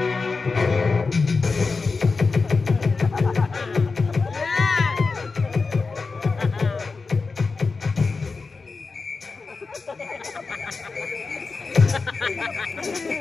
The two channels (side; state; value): right; quieter; 4.3 dB